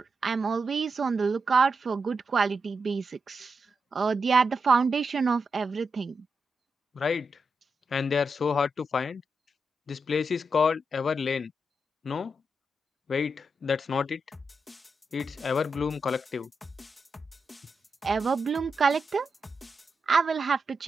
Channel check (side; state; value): both; normal; correlation 0.86